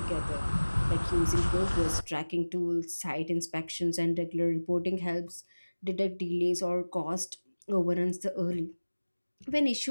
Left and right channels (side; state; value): both; inverted; correlation -1.00